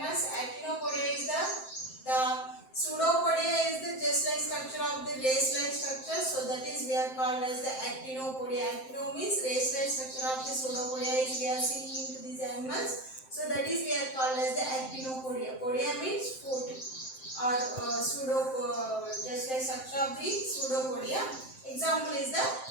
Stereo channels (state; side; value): late; right; 7.7 ms